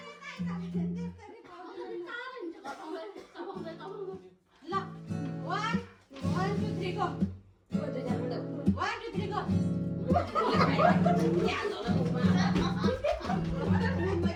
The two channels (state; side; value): identical; both; correlation 1.00